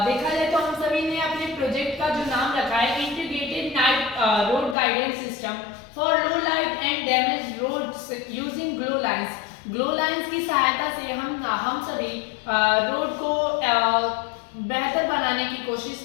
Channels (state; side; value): drops out; right; at 4.8 s